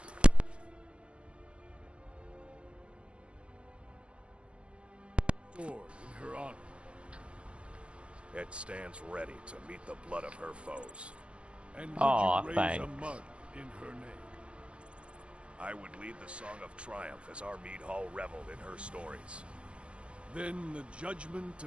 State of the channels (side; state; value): left; late; 0.059 ms